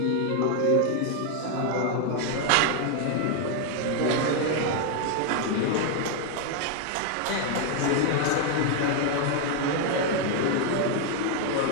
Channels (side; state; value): both; different; correlation 0.01